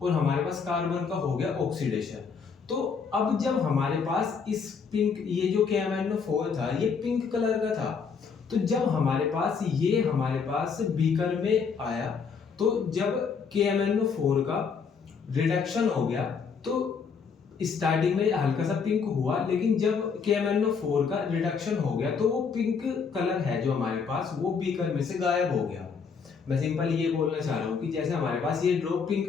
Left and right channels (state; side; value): quieter; right; 5.8 dB